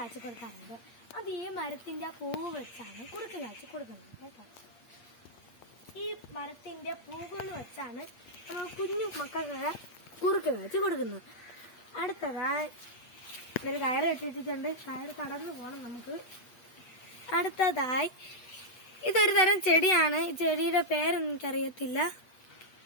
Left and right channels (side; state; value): right; late; 8.5 ms